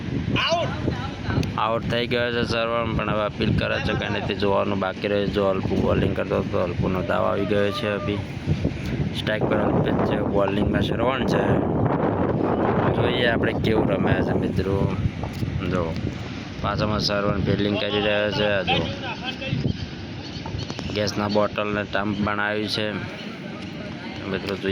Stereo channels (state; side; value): identical; both; correlation 1.00